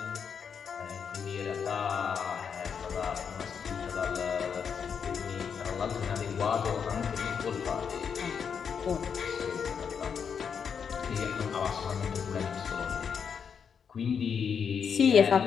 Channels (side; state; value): right; quieter; 6.9 dB